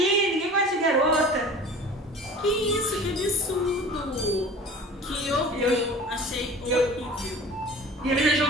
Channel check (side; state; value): both; normal; correlation 0.42